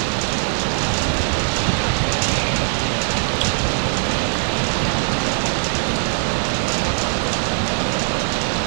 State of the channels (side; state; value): left; silent; 58 dB below the other